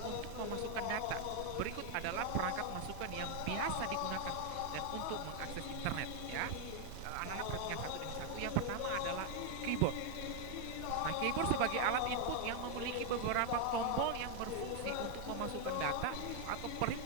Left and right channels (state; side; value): different; both; correlation 0.00